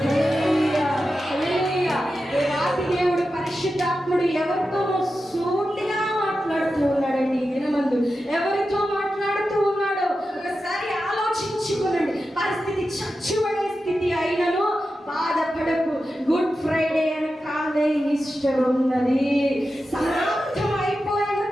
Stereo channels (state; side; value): normal; both; correlation 0.91